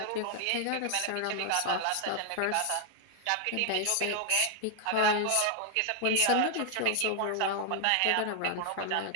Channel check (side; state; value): both; different; correlation 0.00